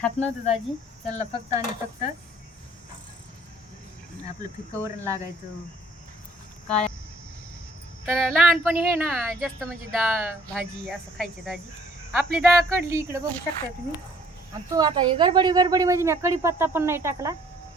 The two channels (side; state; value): both; normal; correlation 0.59